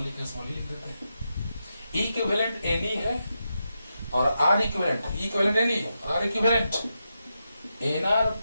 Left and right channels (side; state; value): both; inverted; correlation -0.87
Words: लिख देते हैं। ई इक्विवेलेंट एनी है और R equivalent, E equivalent N E और R equivalent N R